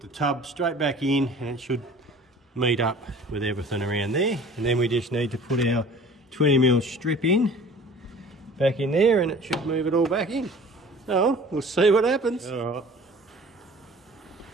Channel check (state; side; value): normal; both; correlation 0.46